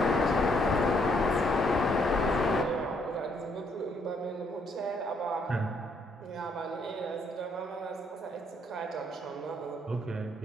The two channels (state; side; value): normal; both; correlation 0.70